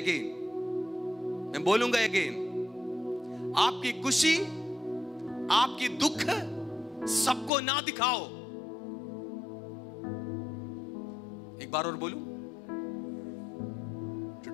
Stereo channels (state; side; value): drops out; right; at 7.5 s